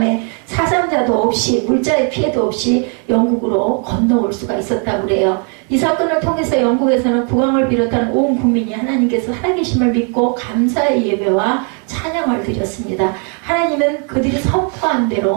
사상자도 없이 물자의 피해도 없이 영국으로 건너올 수가 있었다고 그래요. 이 사건을 통해서 영국에서는 국왕을 비롯한 온 국민이 하나님께서 살아계심을 믿고 감사의 예배와 찬양을 드렸습니다. 하나님은 그들이 선포한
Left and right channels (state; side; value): quieter; left; 39.7 dB